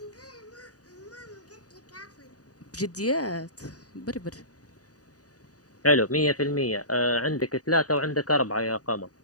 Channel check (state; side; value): late; right; 0.67 ms